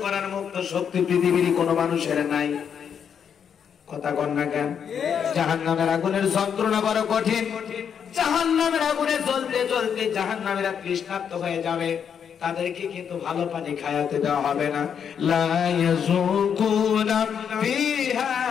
করার মুক্ত শক্তি পৃথিবীর কোনো মানুষের নাই। কথা কন না কেন? জাহান্নামের আগুনের যন্ত্রণা বড় কঠিন। জাহান্নামের আগুনে জ্বলতে জ্বলতে জাহান্নামীরা তৃষ্ণার্ত হয়ে যাবে, তাদেরকে কিন্তু ভালো পানি খাওয়াতে দেওয়া হবে না। লা ইয়াযুকুনা ফিহা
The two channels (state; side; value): quieter; right; 7.7 dB